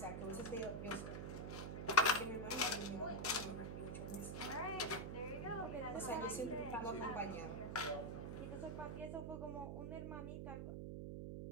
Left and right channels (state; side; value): noise; right; hum, 4 dB below the sound